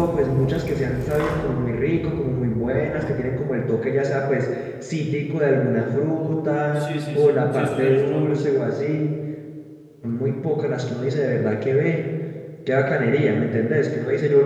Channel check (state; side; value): identical; both; correlation 1.00